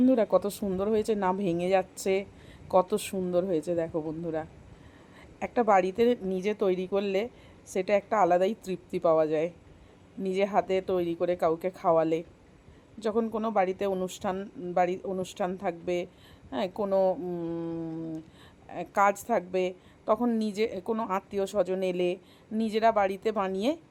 কত সুন্দর হয়েছে, না ভেঙে যাচ্ছে, কত সুন্দর হয়েছে দেখো বন্ধুরা। একটা বাড়িতে নিজে তৈরি করলে সেটা একটা আলাদাই তৃপ্তি পাওয়া যায়, নিজে হাতে তৈরি করে কাউকে খাওয়ালে। যখন কোনো বাড়িতে অনুষ্ঠান থাকবে, হ্যাঁ, কোনো কাজ থাকবে, তখন নিজে কোনো আত্মীয় স্বজন এলে নিজেরা বাড়িতে বানিয়ে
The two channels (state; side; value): identical; both; correlation 1.00